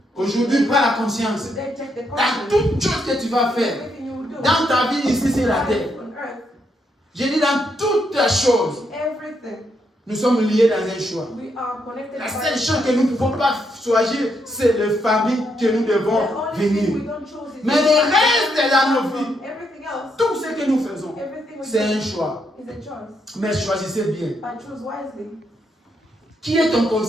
Aujourd'hui, prends la conscience. Today take the Dans conscience. toute chose que tu vas faire, Everything you will do. dans ta vie ici sur la terre, On earth. je dis dans toutes les choses, Everything. nous sommes liés dans un choix. We are connected La by seule chose que nous ne pouvons pas choisir, c'est les familles que nous devons the only thing we venir. don't choose is Mais le reste dans nos vies, everything else. tout ce que nous faisons, Everything we c'est un do choix. is a choice. Mais choisissez bien. But choose wisely. Qui est ton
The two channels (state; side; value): normal; both; correlation 0.78